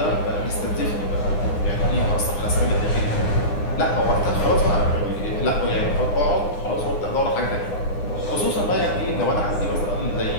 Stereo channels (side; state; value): right; late; 9.8 ms